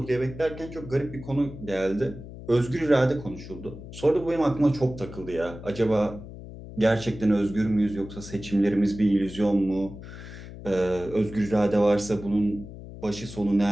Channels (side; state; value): left; noise; hum, 13 dB below the sound